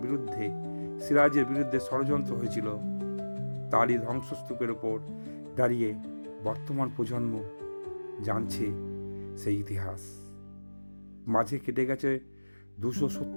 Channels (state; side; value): inverted; both; correlation -1.00